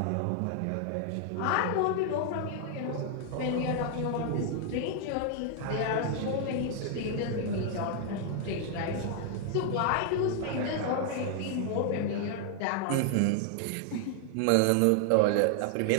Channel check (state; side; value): different; both; correlation 0.00